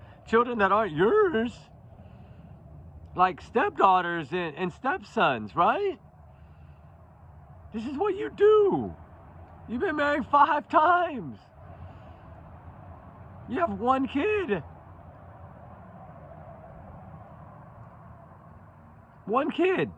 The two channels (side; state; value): both; identical; correlation 1.00